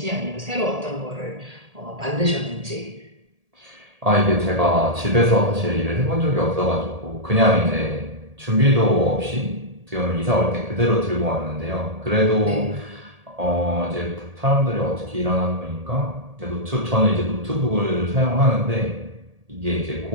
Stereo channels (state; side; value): late; left; 1.8 ms